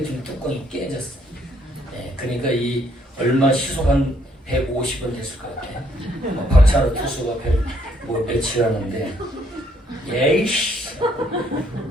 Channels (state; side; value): normal; both; correlation 0.68